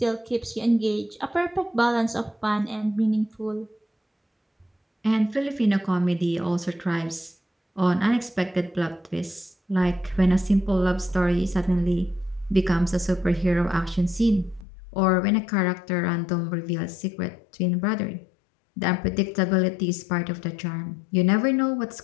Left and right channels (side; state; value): right; drops out; at 14.7 s